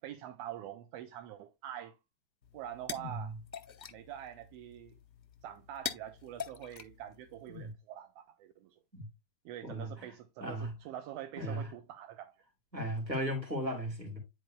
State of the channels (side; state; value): left; late; 1.4 ms